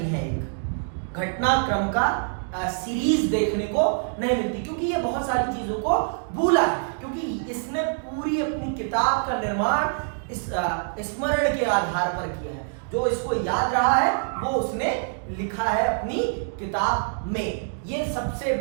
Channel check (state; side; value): silent; left; digital silence